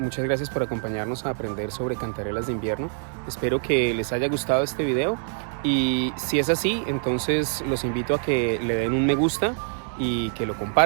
gracias por acompañarnos a aprender sobre cantarelas de invierno. Espero que les haya gustado este video, y si es así, entonces los invito a que le den un me gusta y que lo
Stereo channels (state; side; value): silent; left; 62 dB below the other